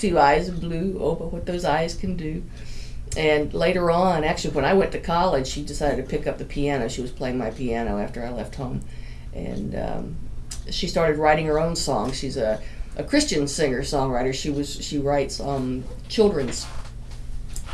eyes of blue. Oh, but what those eyes can do. And later on, actually, when I went to college, she decided to pick up the piano. She was playing my piano after I left home, and she started writing her own songs. She's a Christian singer songwriter. She writes children's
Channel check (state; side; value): identical; both; correlation 1.00